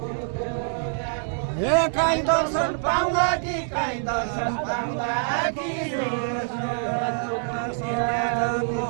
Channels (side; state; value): left; silent; digital silence